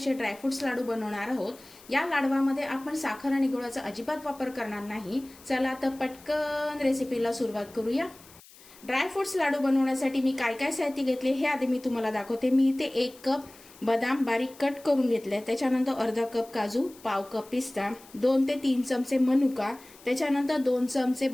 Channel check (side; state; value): left; noise; hiss, 23 dB below the sound